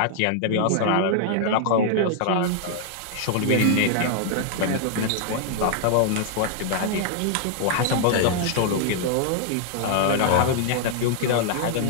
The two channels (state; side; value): different; both; correlation 0.00